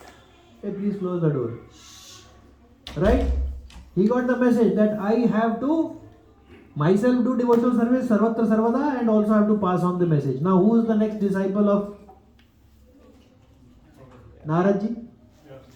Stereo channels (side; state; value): both; identical; correlation 1.00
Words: Hey, please close the door. Right? He got the message that I have to myself do devotional service, Sarvatra Sarvada, and also have to pass on the message. Now who is the next disciple of Naradji?